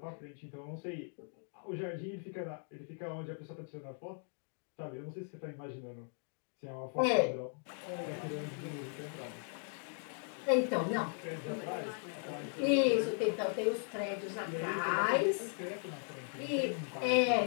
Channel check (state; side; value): silent; right; 53 dB below the other